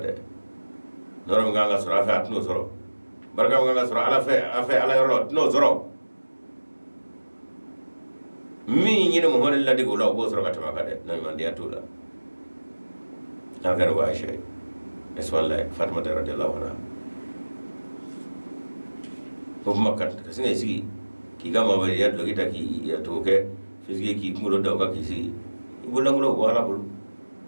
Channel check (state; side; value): inverted; both; correlation -1.00